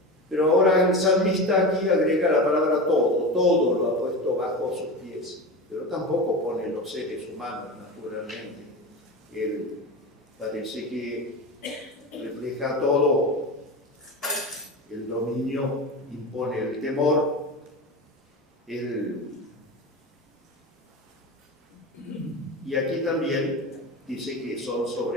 Pero ahora el salmista aquí agrega la palabra todo lo ha puesto bajo sus pies, pero tampoco pone los seres humanos, naturalmente. Él parece que refleja todo. El dominio impone el temor, y aquí también dice que son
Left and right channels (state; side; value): normal; both; correlation 0.26